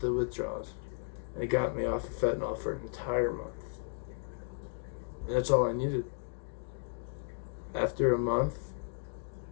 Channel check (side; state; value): right; silent; digital silence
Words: withdrawals. And it got me off of fentanyl for an entire month. And that's all I needed. After a month,